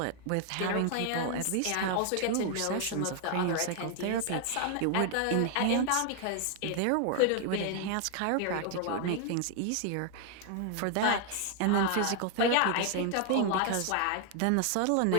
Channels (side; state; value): both; different; correlation 0.00